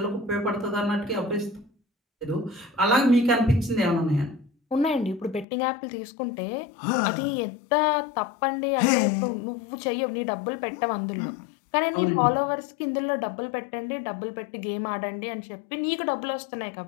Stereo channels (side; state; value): right; drops out; at 5.5 s